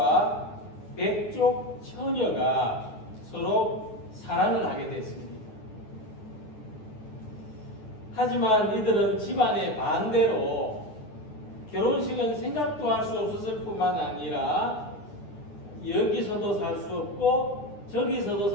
백족 처녀가 서로 사랑을 하게 됐습니다. 하지만 이들은 집안의 반대로 결혼식은 생각도 할 수 없었을 뿐만 아니라 여기서도 살 수 없고 저기서도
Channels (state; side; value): late; right; 9.6 ms